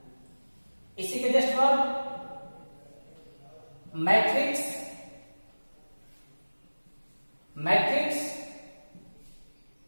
इसी के जस्ट बाद मैट्रिक्स,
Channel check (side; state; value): both; inverted; correlation -1.00